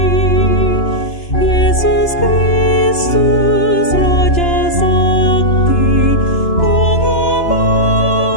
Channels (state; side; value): late; right; 2.9 ms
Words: Yesus Kristus Raja Sakti,